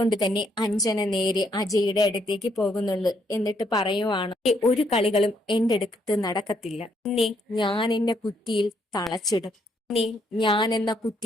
തന്നെ അഞ്ജന നേരെ അജയുടെ അടുത്തേക്ക് പോകുന്നുള്ളു. എന്നിട്ട് പറയുവാണ് ഒരു കളികളും എന്റെ അടുത്ത് നടക്കത്തില്ല. ഞാൻ എന്ന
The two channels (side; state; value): both; normal; correlation 0.72